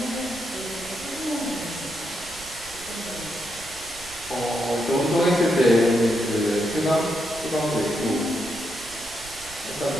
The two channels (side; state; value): right; noise; rumble, 20 dB below the sound